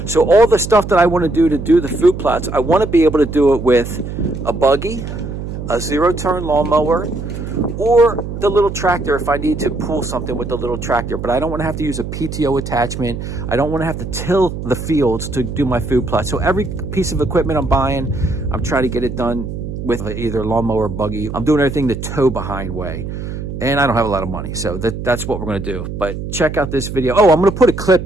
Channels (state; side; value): noise; right; hum, 7 dB below the sound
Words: So all the stuff that I want to do the food plots, I want to be able to do it with a buggy, a zero-turn lawnmower, or the little tractor if I need to pull something with the little tractor. But I don't want to have to use a PTO attachment. I don't want to have to till the fields to do my food plot. So every piece of equipment I'm buying, I'm trying to get it done with either lawnmower or buggy. I'm doing everything the tow behind way. And I don't have a lot of money, so that's what we're going to do. But check out this video. Oh, I'm going to put a